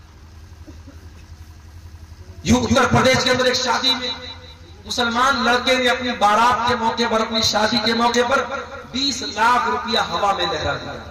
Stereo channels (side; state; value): both; identical; correlation 1.00